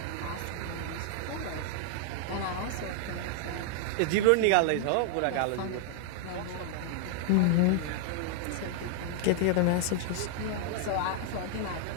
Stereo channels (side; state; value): both; different; correlation 0.00